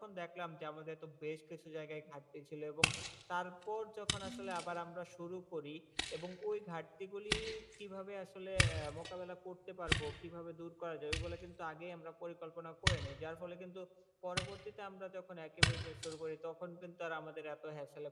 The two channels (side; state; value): both; identical; correlation 1.00